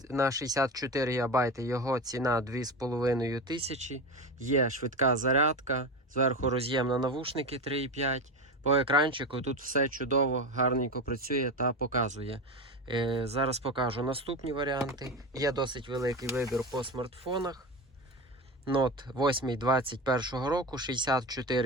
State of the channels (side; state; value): both; normal; correlation 0.22